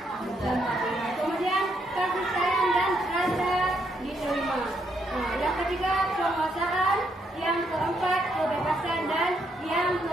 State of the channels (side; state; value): both; normal; correlation 0.75